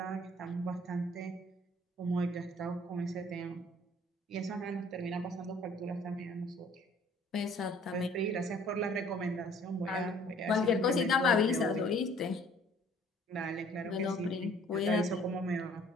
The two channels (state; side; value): normal; both; correlation 0.55